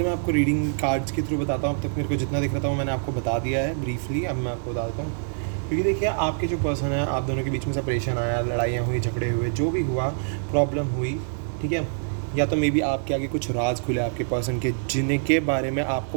मैं आपको रीडिंग कार्ड्स के थ्रू बताता हूँ। अब तक मेरे को जितना दिख रहा था वो मैंने आपको बता दिया है ब्रीफली। अब मैं आपको बता देता हूँ, क्योंकि देखिए आपके जो पर्सन है, आप दोनों के बीच में सेपरेशन आया, लड़ाइयाँ हुई, झगड़े हुए, जो भी हुआ, प्रॉब्लम हुई, ठीक है। या तो मे बी आपके आगे कुछ राज खुले आपके पर्सन के, जिनके बारे में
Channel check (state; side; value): silent; left; digital silence